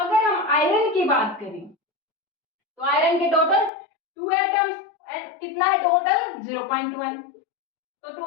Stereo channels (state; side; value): drops out; right; at 3.7 s